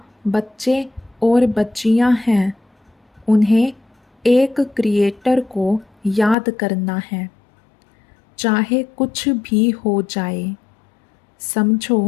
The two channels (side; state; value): right; drops out; at 6.4 s